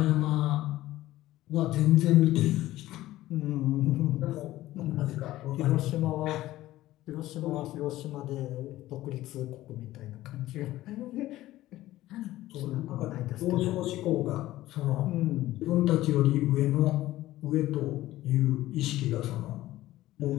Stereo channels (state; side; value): quieter; right; 15.7 dB